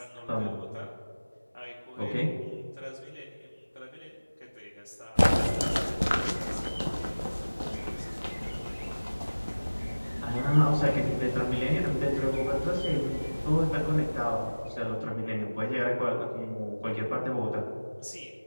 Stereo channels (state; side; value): inverted; both; correlation -1.00